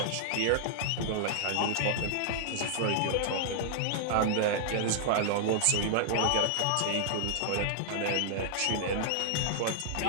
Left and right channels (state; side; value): different; both; correlation -0.01